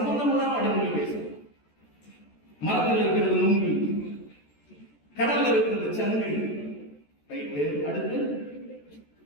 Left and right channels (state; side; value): late; right; 14 ms